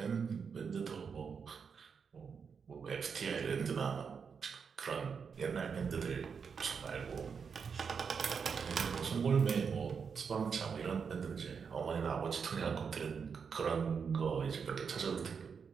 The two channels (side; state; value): left; quieter; 6.1 dB